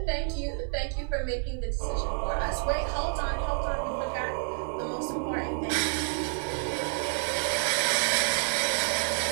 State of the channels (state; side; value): silent; left; 59 dB below the other